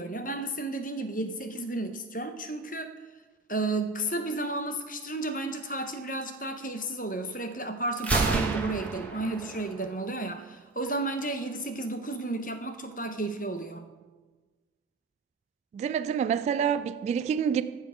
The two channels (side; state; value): left; quieter; 3.5 dB